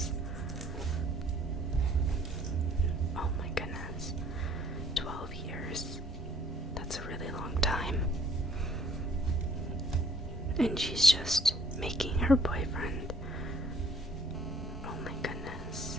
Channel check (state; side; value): normal; both; correlation 0.58